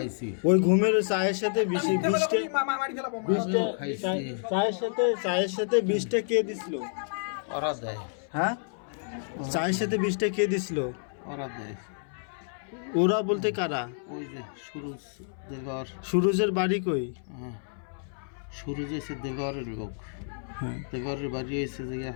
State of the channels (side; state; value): right; silent; 58 dB below the other